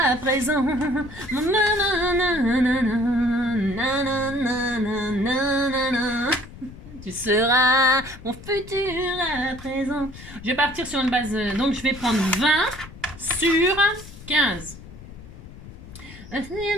présent. Tu seras mon futur à présent. Je vais partir sur une base, donc je vais prendre 20 sur 15. Il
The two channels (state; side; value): noise; left; rumble, 16 dB below the sound